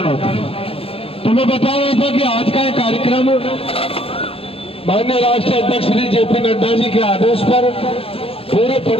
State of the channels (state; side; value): late; right; 0.28 ms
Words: होते हैं। तो मैं बता रहा था कि आज का ये कार्यक्रम माननीय राष्ट्रीय अध्यक्ष श्री जेपी नड्डा जी के आदेश पर पूरे